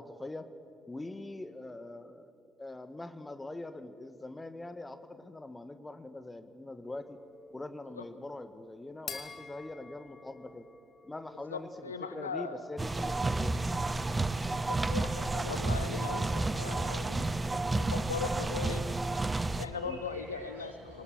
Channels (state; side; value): normal; both; correlation 0.77